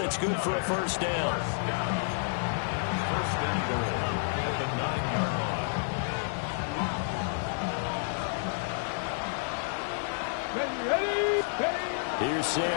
it's good for a 1st down. 1st and goal at the 9-yard line. Ready. Here's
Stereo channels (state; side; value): silent; right; digital silence